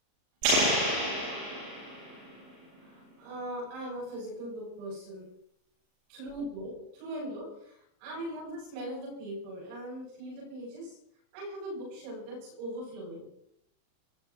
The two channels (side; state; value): left; late; 39 ms